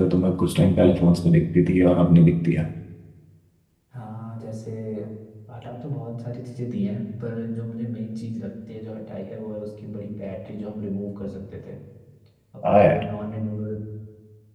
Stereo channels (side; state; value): both; identical; correlation 1.00